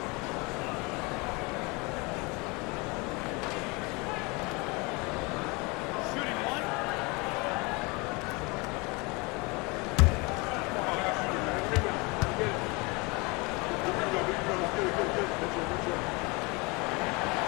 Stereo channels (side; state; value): right; quieter; 27.3 dB